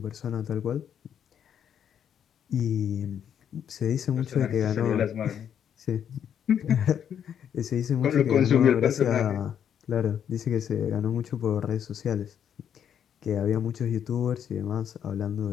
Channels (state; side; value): quieter; right; 8.9 dB